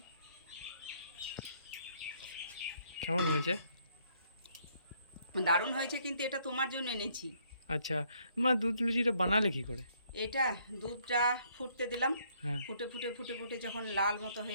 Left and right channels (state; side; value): inverted; both; correlation -0.67